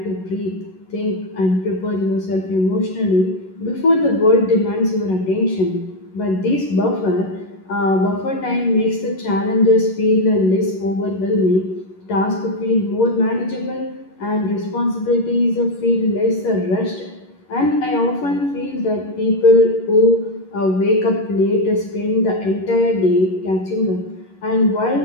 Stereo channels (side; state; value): right; late; 11 ms